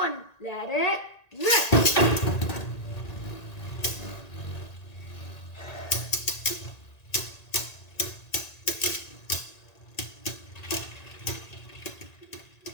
let it rip!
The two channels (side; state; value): right; late; 1.9 ms